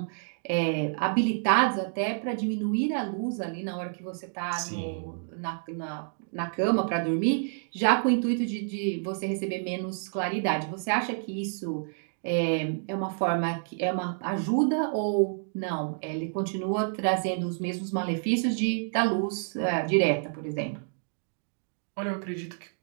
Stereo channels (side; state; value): left; silent; digital silence